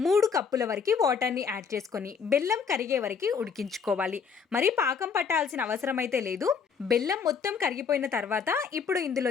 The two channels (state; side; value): quieter; right; 6.1 dB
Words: 3 కప్పుల వరకు వాటర్ని యాడ్ చేసుకొని బెల్లం కరిగే వరకు ఉడికించుకోవాలి. మరి పాకం పట్టాల్సిన అవసరం అయితే లేదు. బెల్లం మొత్తం కరిగిపోయిన తర్వాత ఇప్పుడు